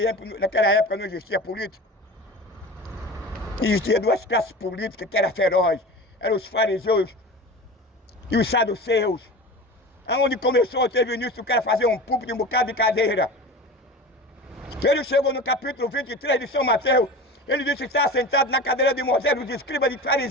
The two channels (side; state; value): both; normal; correlation 0.33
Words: época não existia política? Existia duas classes políticas que eram ferozes. Eram os fariseus e os saduceus. Aonde começou, teve início o cara fazer um púlpito e um bocado de cadeira. Ele chegou no capítulo 23 de São Mateus. Ele disse que está sentado na cadeira de Moisés, dos escribas de